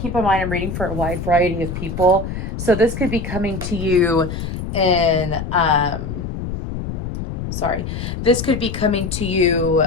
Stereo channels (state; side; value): noise; left; rumble, 6 dB below the sound